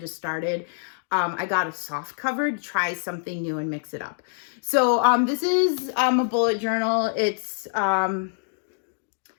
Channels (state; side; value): silent; right; digital silence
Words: started, I got a soft cover to try something new and mix it up. So this is a bullet journal. It's